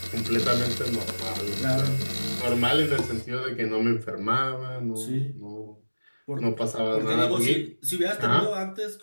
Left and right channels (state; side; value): inverted; both; correlation -1.00